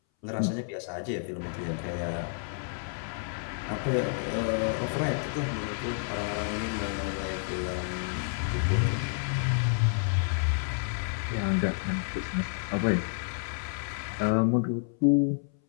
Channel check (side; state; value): right; silent; 58 dB below the other